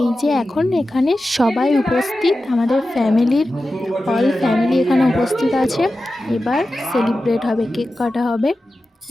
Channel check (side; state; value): both; normal; correlation 0.93